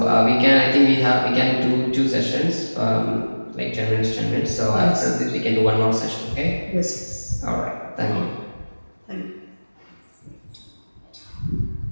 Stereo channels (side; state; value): both; inverted; correlation -1.00